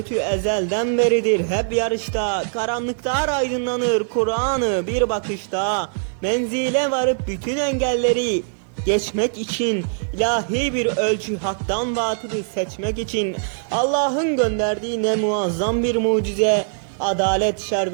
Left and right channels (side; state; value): left; silent; digital silence